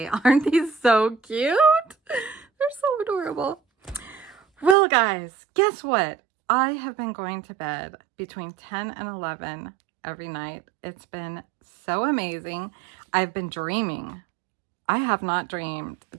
Aren't these so cute? They're so adorable. Well guys, guess what? I have been going to bed between 10 and 11 every night. It's been so amazing. I've been dreaming. I have not dreamt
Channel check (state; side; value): drops out; left; at 4.8 s